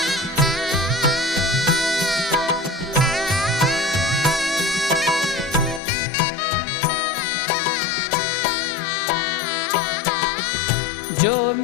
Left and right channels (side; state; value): right; drops out; at 5.8 s